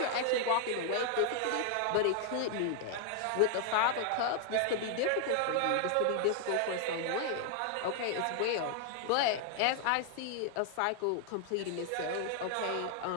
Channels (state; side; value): different; both; correlation 0.00